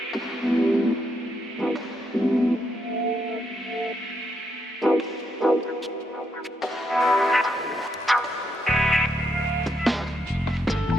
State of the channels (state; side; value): normal; both; correlation 0.78